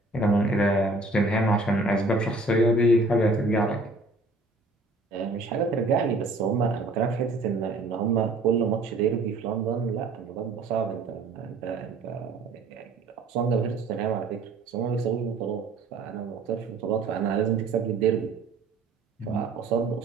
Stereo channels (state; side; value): quieter; left; 3.2 dB